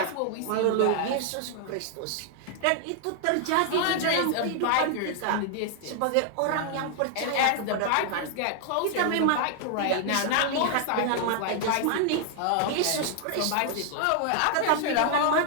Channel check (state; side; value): different; both; correlation 0.00